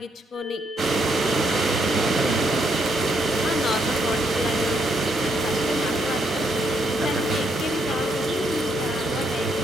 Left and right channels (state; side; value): normal; both; correlation 0.75